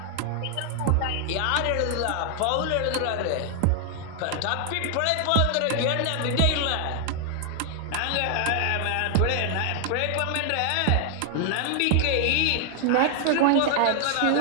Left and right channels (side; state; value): both; different; correlation 0.00